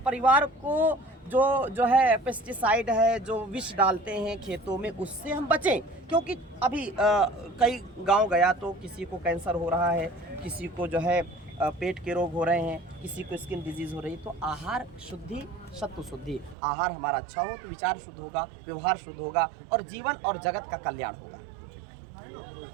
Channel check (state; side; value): drops out; left; at 16.6 s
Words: परिवार को जो है पेस्टिसाइड है, जो विष डालते हैं खेतों में, उससे हम बचें। क्योंकि अभी कई गांव गया तो किसी को कैंसर हो रहा है, किसी को जो है पेट के रोग हो रहे हैं, किसी को स्किन डिजीज़ हो रही है, तो आहार शुद्धि, सत्व शुद्धि, आहार हमारा अच्छा हो तो विचार शुद्ध होगा, व्यवहार शुद्ध होगा और जीवन और जगत का कल्याण होगा।